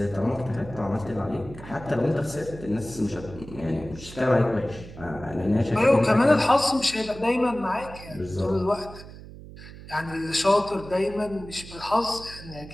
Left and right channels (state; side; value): noise; right; hum, 15 dB below the sound